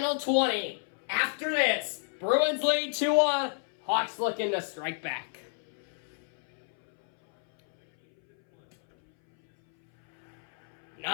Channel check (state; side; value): silent; right; 58 dB below the other